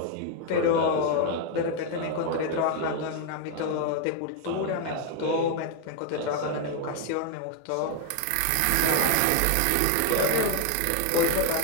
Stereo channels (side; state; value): both; different; correlation 0.01